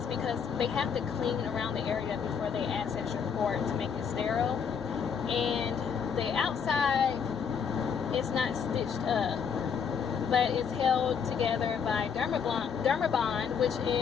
is because they have to clean around the area before they access your port to make it sterile. And the outside, it's not stitched up, but it's held together by Dermabond, which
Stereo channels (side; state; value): right; quieter; 6.8 dB